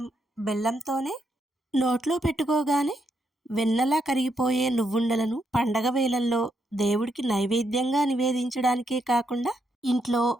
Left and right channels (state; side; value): normal; both; correlation 0.79